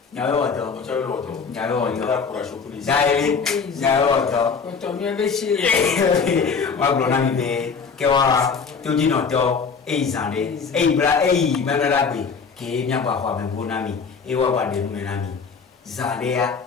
nyawe woto nyawe woto daile nyawe woto mi be shire wa pronami be ke wa to jino to izande ibra memela be ke nyaba kwa be bonami e wa ba de menami zalea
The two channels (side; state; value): right; quieter; 5.5 dB